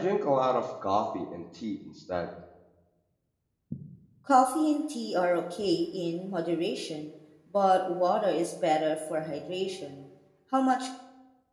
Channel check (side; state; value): both; identical; correlation 1.00